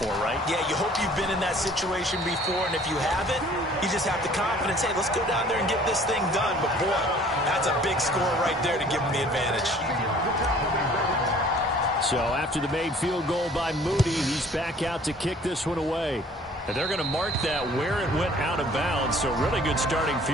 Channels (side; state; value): both; normal; correlation 0.53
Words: right? Yeah, you hope you've been in that situation before, and if you haven't, you just have the confidence, hey, let's go down there and get this thing done. But boy, that's a big score right there to give them the advantage. So after the made field goal by Moody, he's back out to kick this one away. And they're going to mark that where it went out of bounds. So really good starting